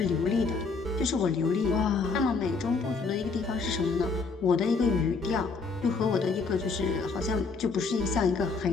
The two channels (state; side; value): quieter; right; 4.4 dB